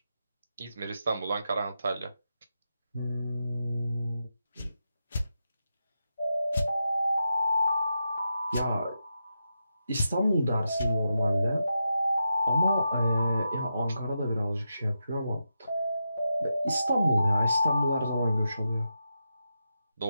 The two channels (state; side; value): inverted; both; correlation -0.87